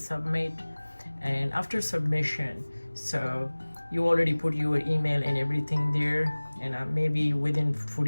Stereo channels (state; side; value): inverted; both; correlation -1.00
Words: And after submission, so you already put your email and everything there, and maybe within